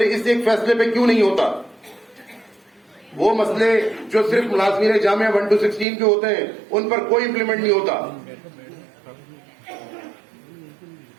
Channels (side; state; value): left; drops out; at 5.9 s